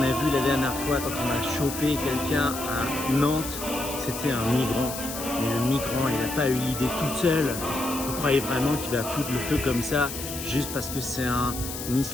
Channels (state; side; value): noise; left; hiss, 8 dB below the sound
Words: a vu la dernière fois quand on a chopé quelqu'un à Nantes? C'était un migrant. Mais le migrant, il n'a pas eu l'idée toute seule. Vous croyez vraiment qu'il va foutre le feu comme ça juste parce que c'est un